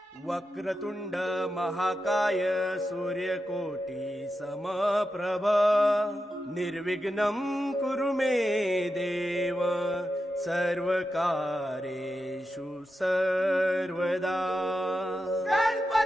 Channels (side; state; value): both; normal; correlation 0.89